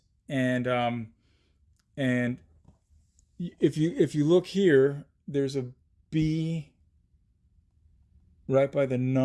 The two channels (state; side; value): identical; both; correlation 1.00